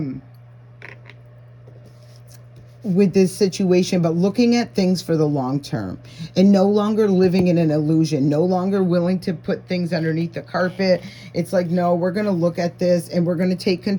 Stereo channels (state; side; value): identical; both; correlation 1.00